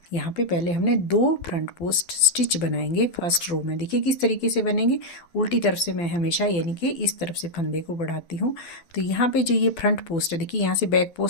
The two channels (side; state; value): right; late; 12 ms